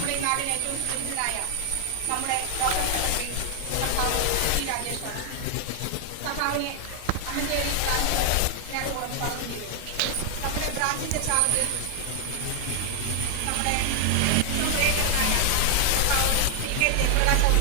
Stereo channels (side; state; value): both; different; correlation 0.00